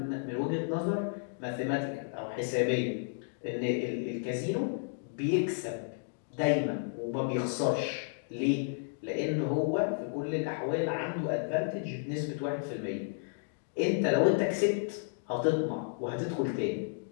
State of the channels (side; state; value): right; silent; digital silence